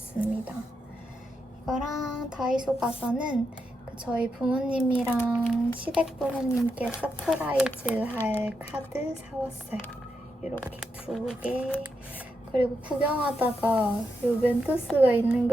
이거랑 다이소 가서는 저희 부모님이랑 시댁 부모님께 서프라이즈 할 카드 사왔어요. 이렇게 2개. 그리고 구경하다가 이 멘토스가 있는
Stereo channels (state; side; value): normal; both; correlation 0.84